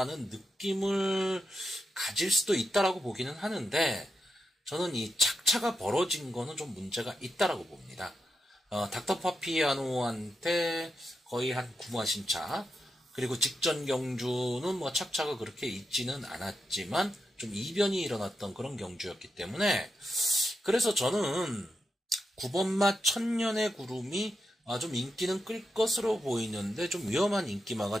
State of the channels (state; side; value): normal; both; correlation 0.87